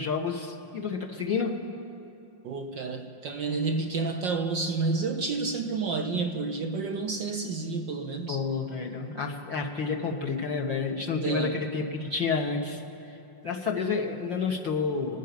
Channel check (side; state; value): left; late; 5.6 ms